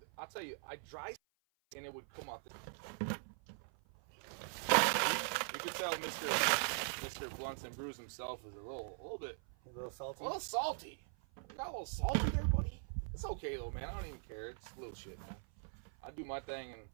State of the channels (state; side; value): silent; left; 50 dB below the other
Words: I'll tell you, I dry and it would come out the. You can tell Mr. Blunts and Brews himself is a little bit. A little salty. A little salty. You got a little salty there, buddy. It's okay though, man. I don't even care. It's a little shit, man. I do my thing and